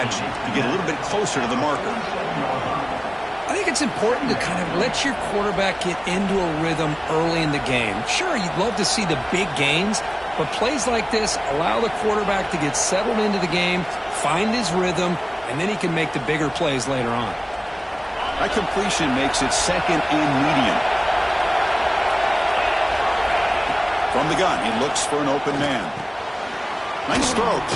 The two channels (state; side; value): identical; both; correlation 1.00